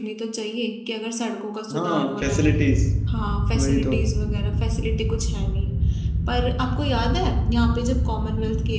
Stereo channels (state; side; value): identical; both; correlation 1.00